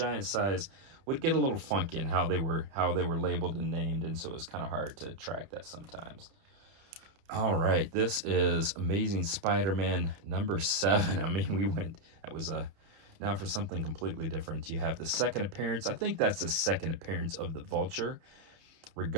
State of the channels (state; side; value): late; left; 30 ms